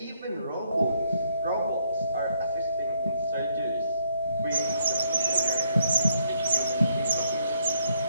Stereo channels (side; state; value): both; inverted; correlation -0.72